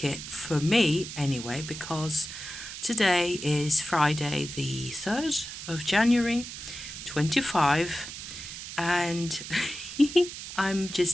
it for me anyway, because today is Friday the 3rd of January, 25, and I'm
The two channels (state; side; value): noise; right; hiss, 10 dB below the sound